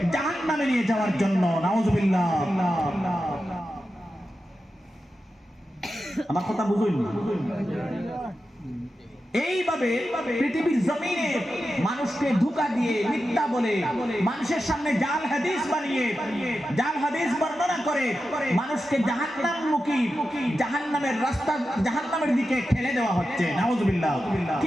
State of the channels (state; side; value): normal; both; correlation 0.91